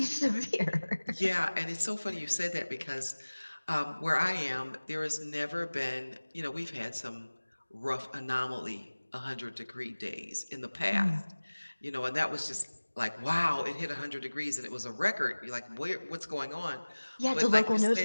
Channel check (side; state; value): both; inverted; correlation -1.00